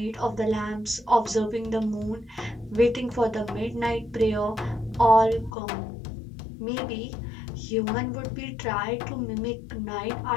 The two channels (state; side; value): drops out; right; at 5.5 s